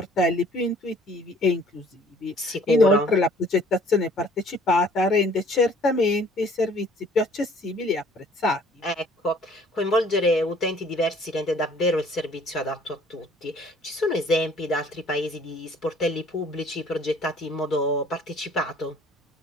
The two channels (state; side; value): normal; both; correlation 0.56